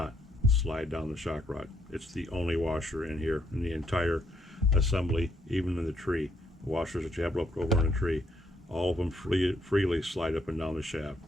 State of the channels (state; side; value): normal; both; correlation 0.73